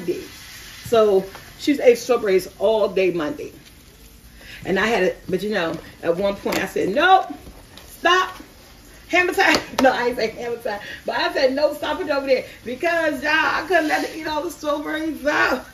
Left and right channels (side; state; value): both; identical; correlation 1.00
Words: So She's ate strawberries all day Monday. And I had it, but you know, at one point I said, nope, stop. Hammer time. No, I ain't say hammer time. But I said, no, stop it over there. Because, y'all, I couldn't let her eat all the strawberries out.